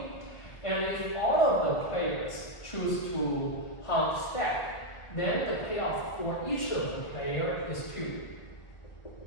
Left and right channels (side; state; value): right; late; 1.3 ms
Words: and if all of the players choose to hunt stack, then the payoff for each of the player is 2.